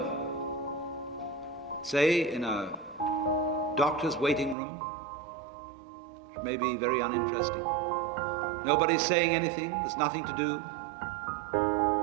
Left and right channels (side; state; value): left; drops out; at 4.5 s